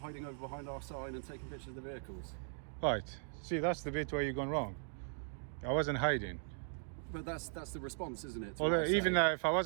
hiding over behind our sign and taking pictures of the vehicles? Right. See, that's the bit where you've gone wrong. I wasn't hiding. But that's the response, isn't it? to Although, what I even say? if I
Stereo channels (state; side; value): silent; left; digital silence